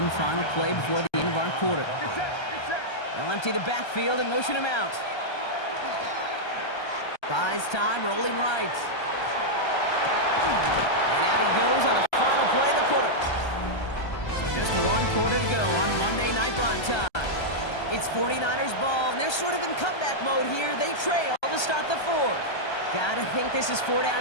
final play before the end of our quarter. They'll empty the backfield and motion him out. Buys time, rolling right. And out he goes on the final play of the quarter. So just one quarter to go on Monday Night Prime Time. It's 49ers ball, and they're sort of in comeback mode here. They trail to start the fourth. Gotta think this is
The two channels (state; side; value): late; right; 1.3 ms